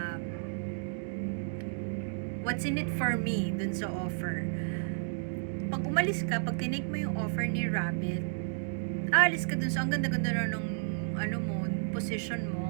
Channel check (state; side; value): silent; left; digital silence